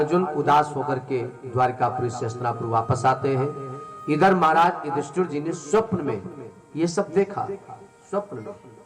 उदास होकर के द्वारकापुरी से हस्तिनापुर वापस आते हैं। इधर महाराज युधिष्ठिर जी ने स्वप्न में ये सब देखा, स्वप्न में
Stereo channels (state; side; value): identical; both; correlation 1.00